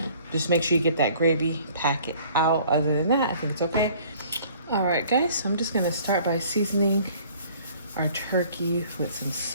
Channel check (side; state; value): both; inverted; correlation -0.54